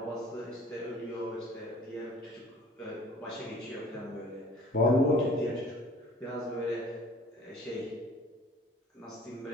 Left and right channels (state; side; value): normal; both; correlation 0.50